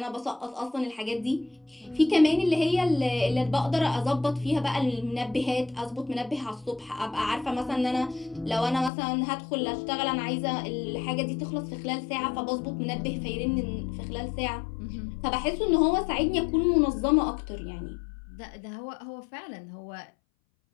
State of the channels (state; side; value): drops out; right; at 8.9 s